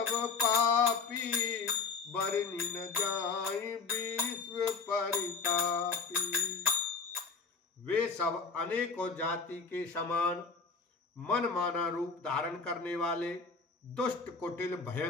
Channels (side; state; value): right; quieter; 4.8 dB